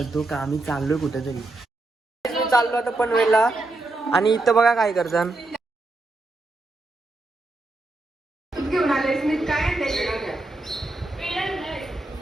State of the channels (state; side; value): quieter; left; 3.0 dB